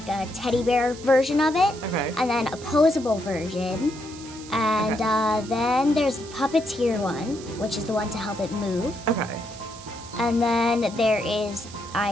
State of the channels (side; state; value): right; noise; hiss, 17 dB below the sound